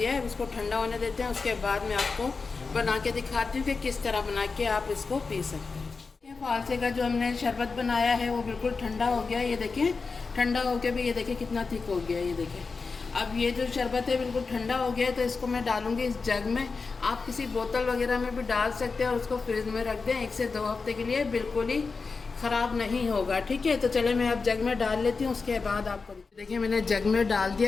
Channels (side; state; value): right; quieter; 4.5 dB